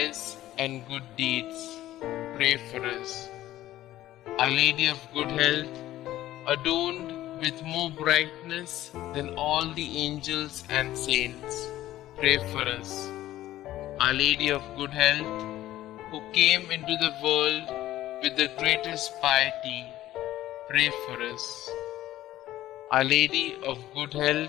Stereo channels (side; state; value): right; quieter; 14.5 dB